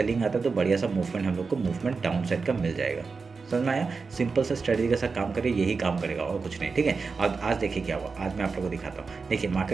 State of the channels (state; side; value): quieter; left; 4.7 dB